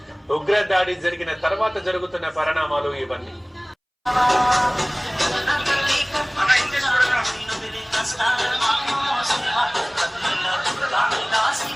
ఉగ్ర దాడి జరిగిన తర్వాత జరుగుతున్న పరిణామాలు ఇవన్నీ.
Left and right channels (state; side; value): identical; both; correlation 1.00